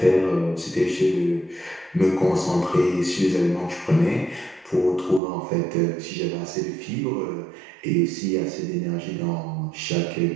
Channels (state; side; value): drops out; left; at 5.2 s